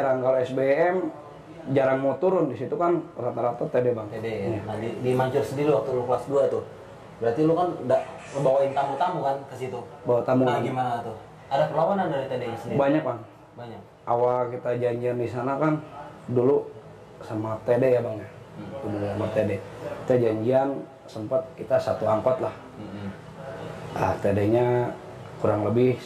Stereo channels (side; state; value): both; identical; correlation 1.00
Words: Kalau SBM jarang mau turun, di situ kan rata-rata TD bang. TD ya. Nah di Mancur sendiri waktu lu kelas 2 tuh, berarti lu kan udah ngebawain tamu-tamu kan ke situ? Bawa tamu. Nah gimana tuh? Ada perlawanan dari TD-nya sendiri? Banyak bang. Banyak. Awal kita janjian di sana kan dulu sama TD ya bang ya. Dulu sama TD. Kita janjian sempat kita satu angkot lah. Ah TD-nya kurang lebih